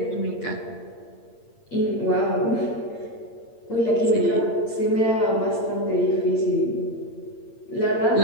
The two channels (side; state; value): right; late; 8.7 ms